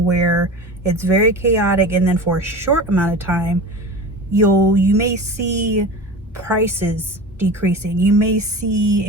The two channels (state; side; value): normal; both; correlation 0.32